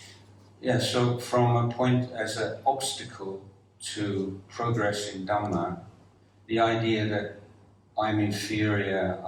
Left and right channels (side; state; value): both; identical; correlation 1.00